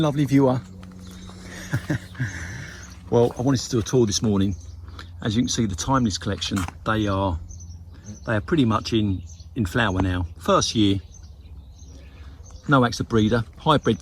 viewer. Well, I wanted to do a tour this morning. As you can see, the Timeless collection, they are pretty much in flower now. First year, no acts of breeder,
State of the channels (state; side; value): identical; both; correlation 1.00